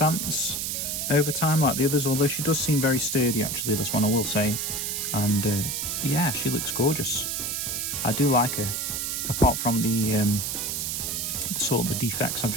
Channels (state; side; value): noise; right; hiss, 2 dB below the sound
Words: over time like the others, although she does seem very sturdy actually, this one I will say. And yeah, she looks gorgeous. I do like her, apart from the sort of the defects I've